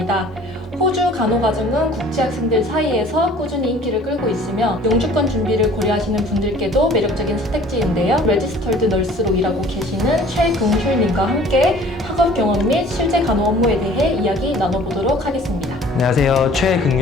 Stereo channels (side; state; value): both; normal; correlation 0.50